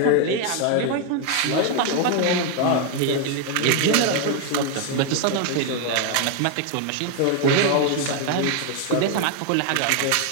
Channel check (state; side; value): different; both; correlation 0.01